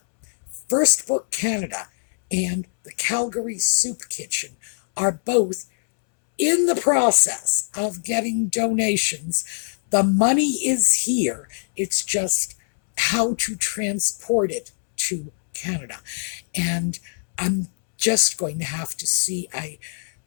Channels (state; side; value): silent; right; 64 dB below the other